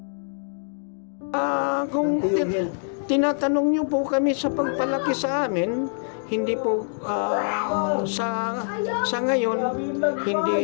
Kung tinatanong niyo po kami sa pagpalaki sa amin, hindi po sa ngayon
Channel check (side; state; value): right; silent; digital silence